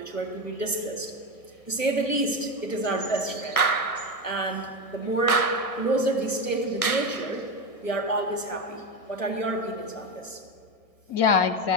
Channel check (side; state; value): right; late; 1.6 ms